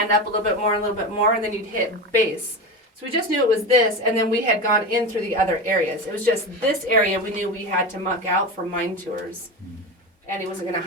up a little bit more, and then you'd hit base. So we just knew it was this, and then we had gone in through the other areas. It was just this area we knew we had to muck out for mine tours. And he wasn't going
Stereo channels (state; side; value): normal; both; correlation 0.23